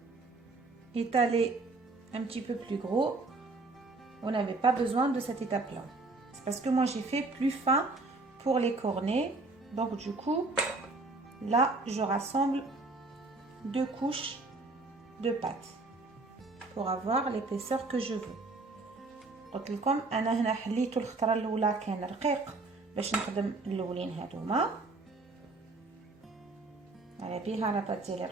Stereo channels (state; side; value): quieter; left; 3.4 dB